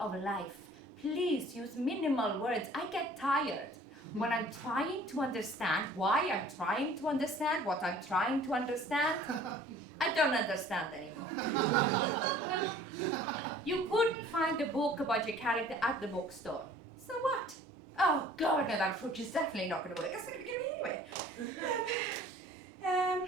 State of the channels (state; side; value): normal; both; correlation 0.51